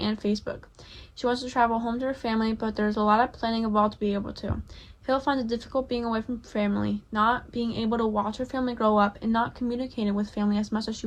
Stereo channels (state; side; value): identical; both; correlation 1.00